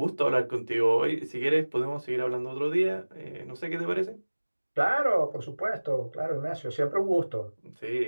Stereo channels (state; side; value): inverted; both; correlation -1.00